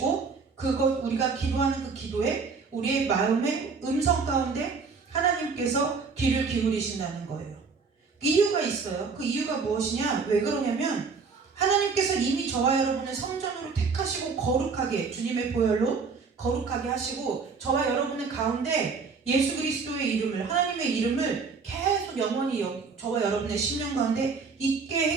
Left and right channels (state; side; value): quieter; left; 5.0 dB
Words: 우리가 기도하는 그 기도에 우리의 마음의 음성 가운데 하나님께서 귀를 기울이신다는 거예요. 이유가 있어요. 그 이유가 무엇이냐? 왜 그러냐면 하나님께서 이미 저와 여러분을 성전으로 택하시고 거룩하게, 주님의 보혈로 거룩하게 하시고 저와 여러분의 가운데 예수 그리스도의 이름을, 하나님의 이름을 계속 영원히 저와 여러분의 심령 가운데 있게